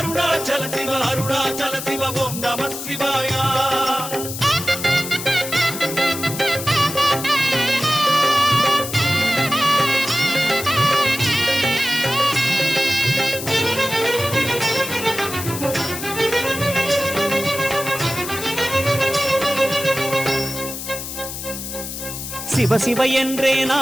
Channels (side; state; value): left; noise; hiss, 8 dB below the sound